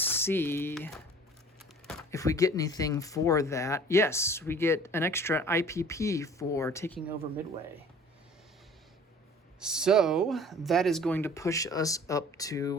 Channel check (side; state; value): both; normal; correlation 0.48